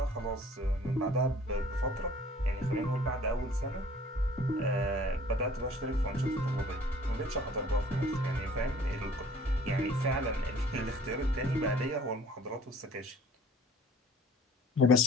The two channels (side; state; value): both; normal; correlation 0.52